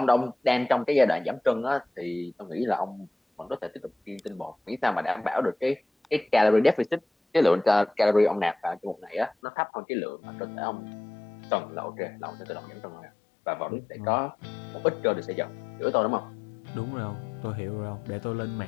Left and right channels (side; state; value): right; drops out; at 9.3 s